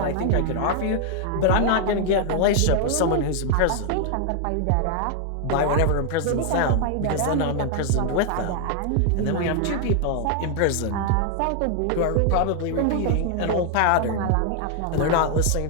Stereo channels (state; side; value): different; both; correlation 0.00